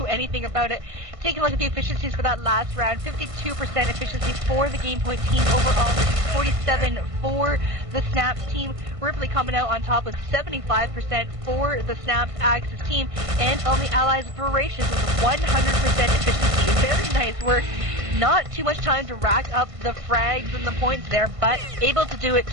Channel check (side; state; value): left; late; 1.5 ms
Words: anything about it. Taking a look at the efficiencies for that last round, 52% efficiency for the Gamepoint team overall, 47 for the SnapS team. Ripley coming out on top with 75% for the SnapS Axis team, and on the Allies, Veracious with 100% efficiency. Very nice work. Not too much time to rack up the frags and the points there, but able to do it.